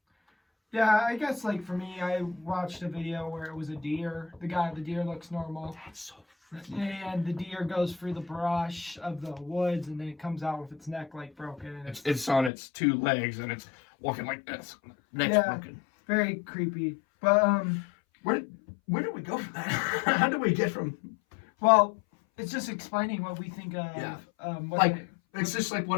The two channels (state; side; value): drops out; right; at 12.5 s